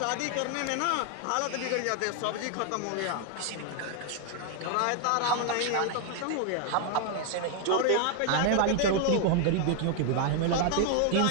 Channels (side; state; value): both; different; correlation 0.00